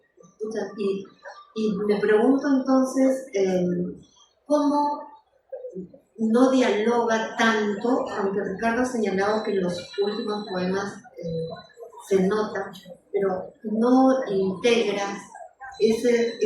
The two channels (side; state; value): both; identical; correlation 1.00